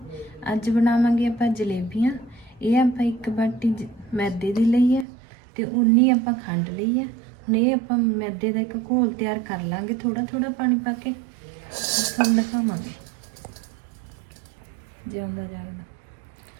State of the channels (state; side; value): drops out; left; at 5.1 s